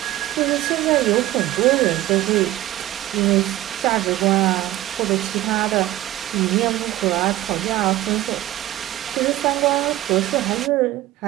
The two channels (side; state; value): left; quieter; 15.4 dB